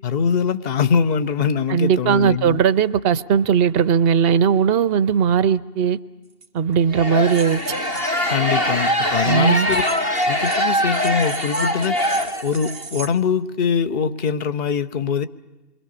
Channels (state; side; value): late; left; 2.8 ms